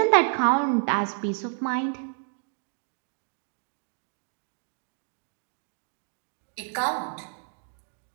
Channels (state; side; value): silent; left; 58 dB below the other